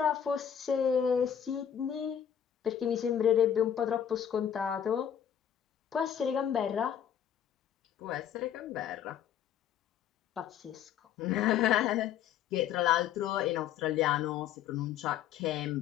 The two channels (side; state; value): right; quieter; 9.3 dB